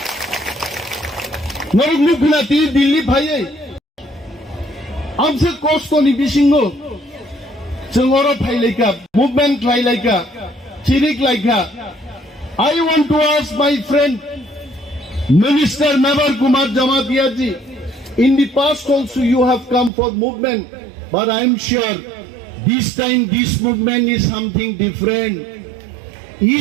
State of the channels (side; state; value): left; drops out; at 19.9 s